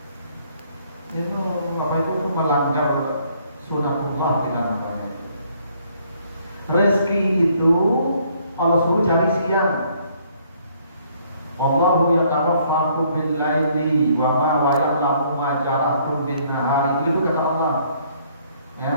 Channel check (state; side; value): inverted; both; correlation -0.65